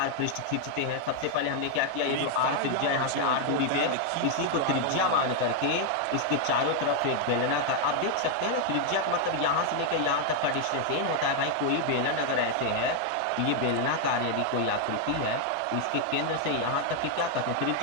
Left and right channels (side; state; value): both; different; correlation 0.00